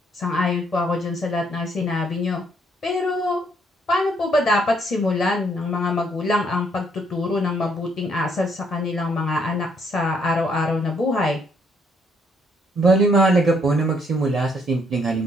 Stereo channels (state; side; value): normal; both; correlation 0.70